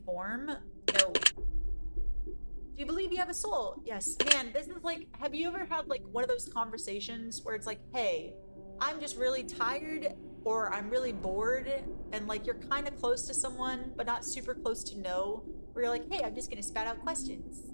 form? No. Do you believe you have a soul? Yes. Man, this is like, have you ever had like one of those conversations where it's like, hey, I'm just really tired or I'm really bored, and like you're kind of close to someone but not super close to know, where you're like, hey, I'm just gonna spat out questions.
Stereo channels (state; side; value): inverted; both; correlation -1.00